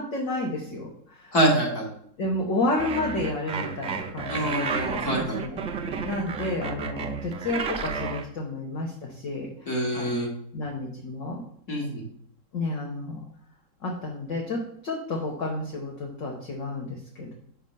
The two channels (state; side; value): late; right; 3.7 ms